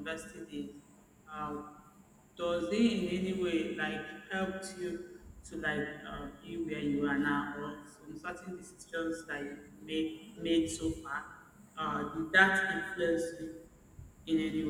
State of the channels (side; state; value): both; identical; correlation 1.00